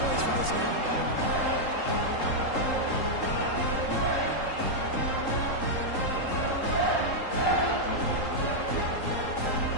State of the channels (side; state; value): right; late; 3.8 ms